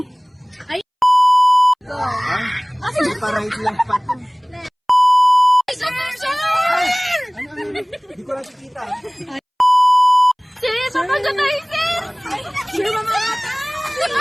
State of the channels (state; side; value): identical; both; correlation 1.00